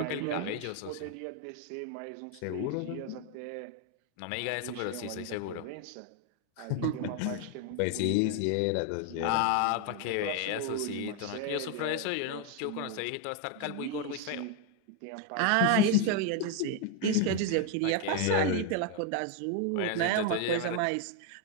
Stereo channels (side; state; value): both; different; correlation 0.01